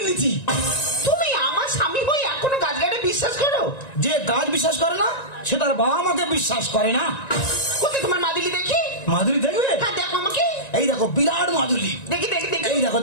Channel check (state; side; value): late; right; 1.9 ms